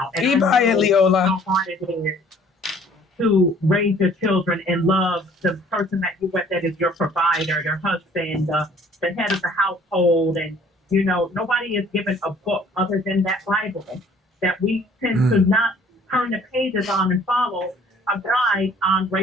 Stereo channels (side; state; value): both; normal; correlation 0.56